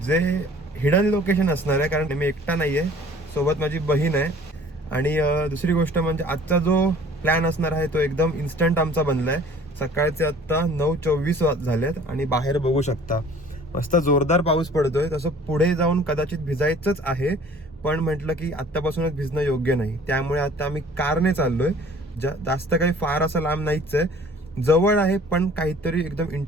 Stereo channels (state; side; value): normal; both; correlation 0.50